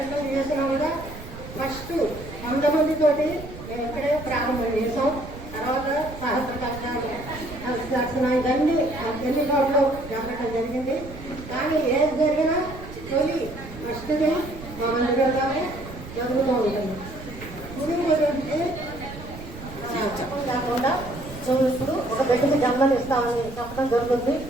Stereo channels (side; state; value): right; noise; rumble, 13 dB below the sound